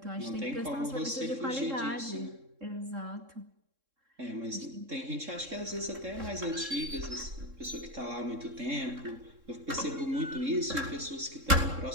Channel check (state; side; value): late; left; 3.7 ms